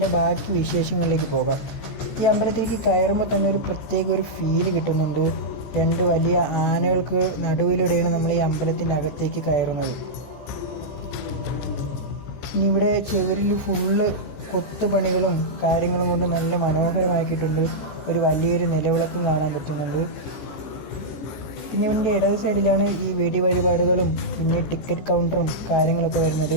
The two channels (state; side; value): late; right; 14 ms